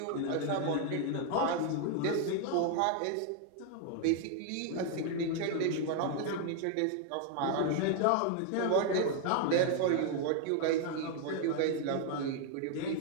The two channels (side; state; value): both; different; correlation 0.00